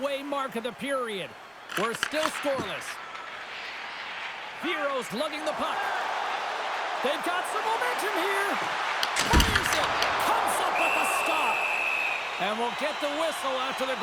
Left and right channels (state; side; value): identical; both; correlation 1.00